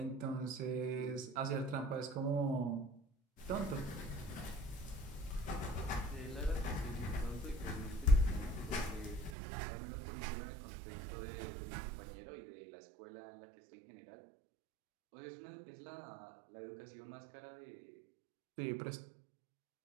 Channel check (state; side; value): drops out; left; at 9.3 s